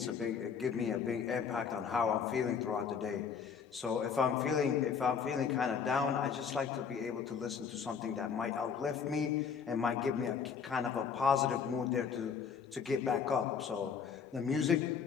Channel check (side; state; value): right; quieter; 6.5 dB